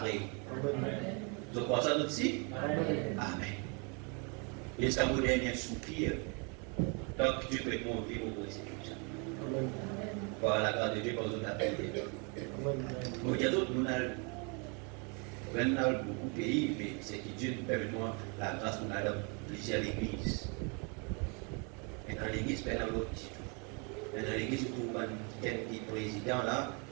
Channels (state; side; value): quieter; left; 34.1 dB